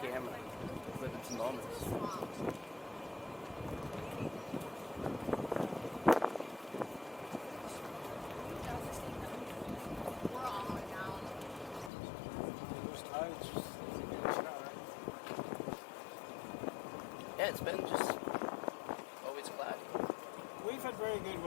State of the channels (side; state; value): right; drops out; at 11.9 s